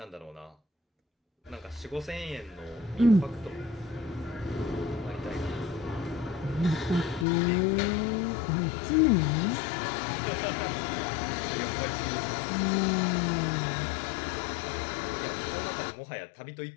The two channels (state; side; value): drops out; right; at 7.2 s